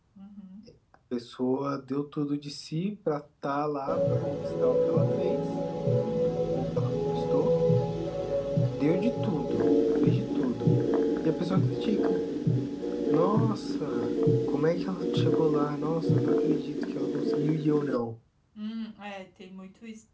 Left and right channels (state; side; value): identical; both; correlation 1.00